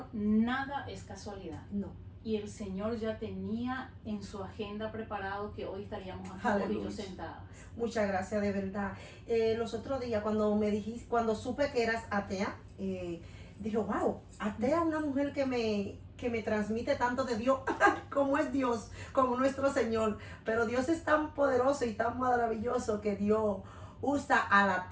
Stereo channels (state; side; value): identical; both; correlation 1.00